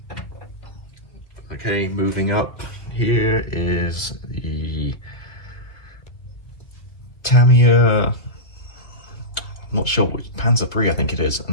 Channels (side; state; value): right; late; 1.7 ms